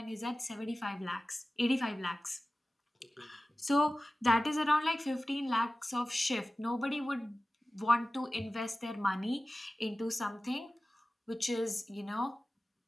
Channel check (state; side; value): normal; both; correlation 0.96